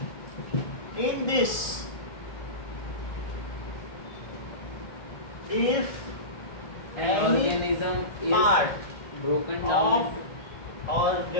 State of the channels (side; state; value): right; late; 1.6 ms